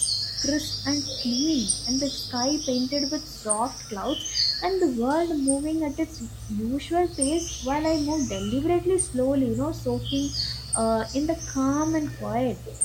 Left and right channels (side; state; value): both; identical; correlation 1.00